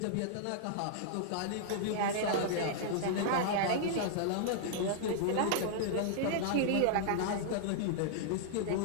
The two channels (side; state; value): both; different; correlation -0.01